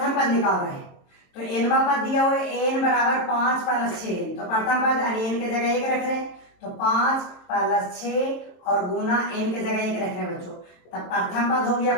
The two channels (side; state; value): right; late; 22 ms